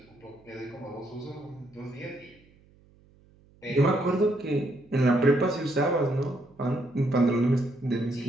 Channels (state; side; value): noise; right; hum, 29 dB below the sound